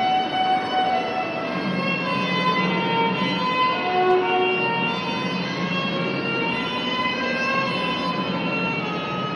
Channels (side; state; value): both; identical; correlation 1.00